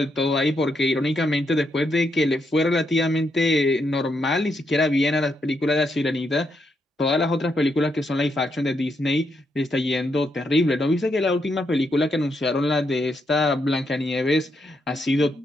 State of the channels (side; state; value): both; normal; correlation 0.79